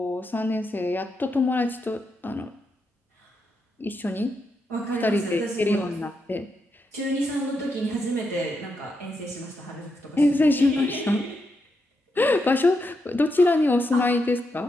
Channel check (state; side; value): normal; both; correlation 0.83